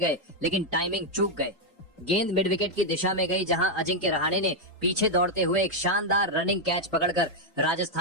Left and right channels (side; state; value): both; normal; correlation 0.00